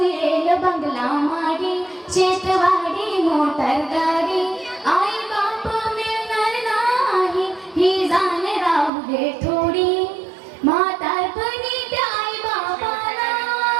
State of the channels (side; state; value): left; drops out; at 8.9 s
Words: बंगला माडी, शेतवाडी मोटर गाडी. आई बाप मिळणार नाही ही जाण राहू दे थोडी. म्हातारपणी त्या आई बाबाला,